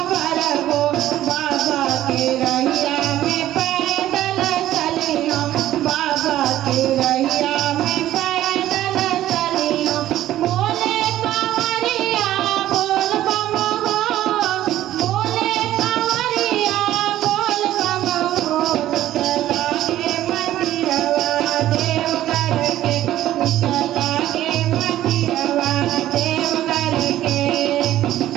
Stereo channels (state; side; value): quieter; left; 13.5 dB